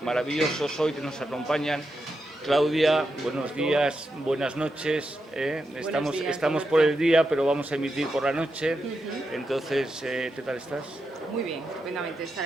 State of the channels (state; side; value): normal; both; correlation 0.86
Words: maravillosos hoy que nos acompañan. Claudia, buenos días, buenas noches. Estamos por el día, pero vamos a emitir por la noche. Entonces, ¿qué tal estás? Muy bien, estupendamente estar